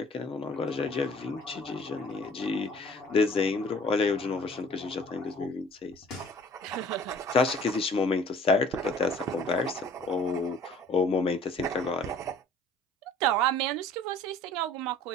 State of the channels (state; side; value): normal; both; correlation 0.51